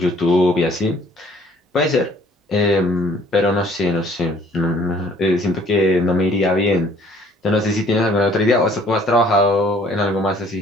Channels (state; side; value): normal; both; correlation 0.58